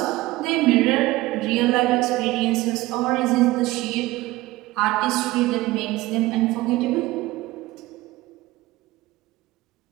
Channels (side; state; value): left; quieter; 18.7 dB